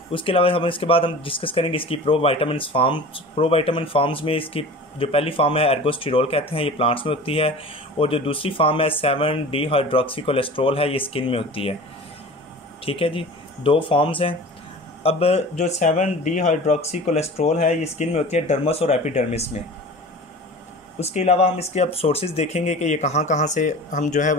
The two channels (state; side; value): normal; both; correlation 0.38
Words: उसके अलावा हम इसके बाद हम डिस्कस करेंगे इसकी प्रोविटामिन फॉर्म्स में इसकी जो पहली फॉर्म है एर्गोस्टेरॉल कहते हैं, ये प्लांट्स में होती है, और जो दूसरी फॉर्म है 7 डिहाइड्रोक्सी कोलेस्ट्रॉल है, ये स्किन में होती है। ठीक है जी, दो फॉर्म्स हैं। अब जो 7 डिहाइड्रोक्सी कोलेस्ट्रॉल है ये स्किन में होती है डर्मस और एपिडर्मिस में। उसके अलावा हम इसके अब सोर्सेज देखेंगे कि ये कहाँ कहाँ से हम जो है